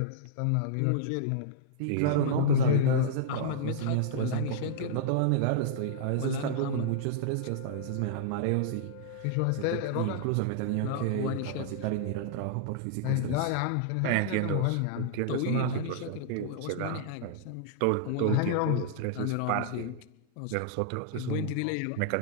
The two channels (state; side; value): different; both; correlation -0.01